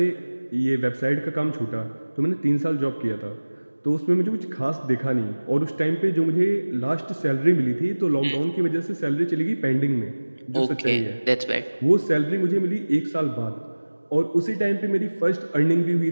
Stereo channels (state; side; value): inverted; both; correlation -1.00